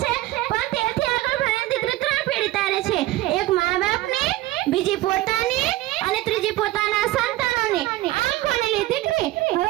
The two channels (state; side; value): quieter; left; 16.8 dB